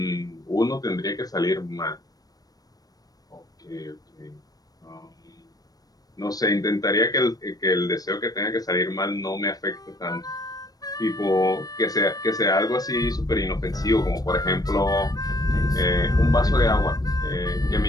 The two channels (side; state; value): right; late; 0.18 ms